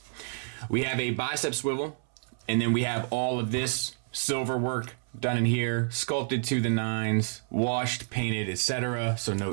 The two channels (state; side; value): silent; left; 59 dB below the other